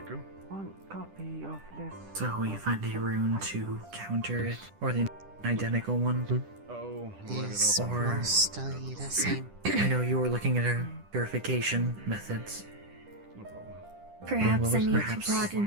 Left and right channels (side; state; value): left; late; 10 ms